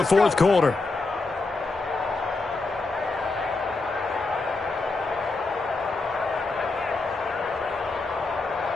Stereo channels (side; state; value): right; quieter; 3.5 dB